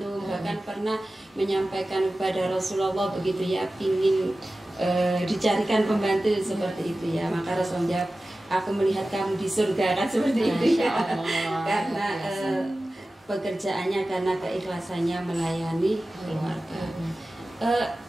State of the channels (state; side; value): normal; both; correlation 0.96